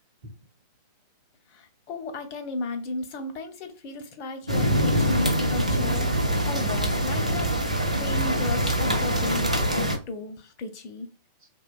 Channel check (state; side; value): inverted; both; correlation -0.58